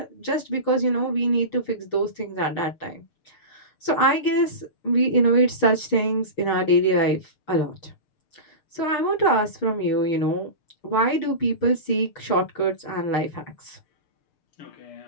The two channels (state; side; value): late; right; 6.1 ms